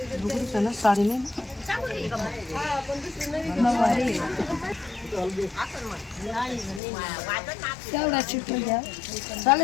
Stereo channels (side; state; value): right; drops out; at 6.8 s